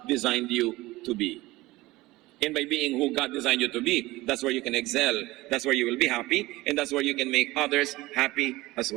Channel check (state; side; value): quieter; left; 19.4 dB